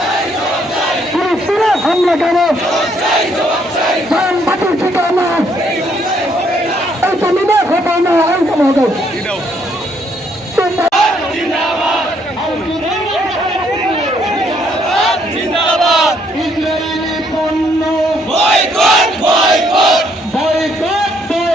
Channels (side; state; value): both; normal; correlation 0.70